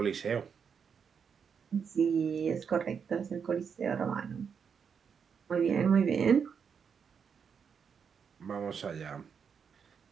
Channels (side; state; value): left; quieter; 6.7 dB